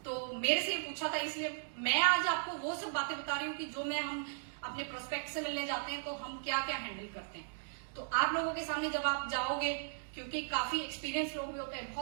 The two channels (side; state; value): left; silent; digital silence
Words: तो मेरे से पूछा था, इसलिए मैं आज आपको वो सब बातें बता रही हूँ कि जो हम अपने प्रोस्पेक्ट से मिलने जाते हैं तो हम क्या क्या हैंडल करते हैं। तो आप लोगों के सामने जब आप जाओगे, क्योंकि काफी एक्सपीरियंस लोग भी होते हैं,